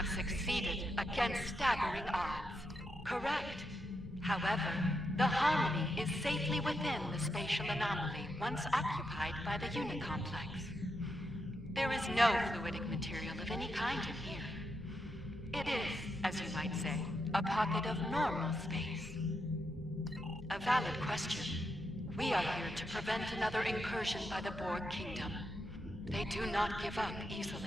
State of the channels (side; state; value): both; normal; correlation 0.83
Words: succeeded against staggering odds. Correct. However, the Harmony is safely within the spatial anomaly once occupied by the unit complex. There is no fluidic material of any kind in here. It is, as you might say, a pocket of normal space. A valid question. We are here to prevent another incursion by the Borg Kingdom. They do not give up